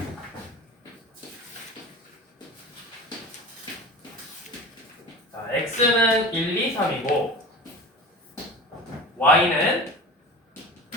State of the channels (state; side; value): normal; both; correlation 0.34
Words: 자, x는 1, 2, 3이고 y는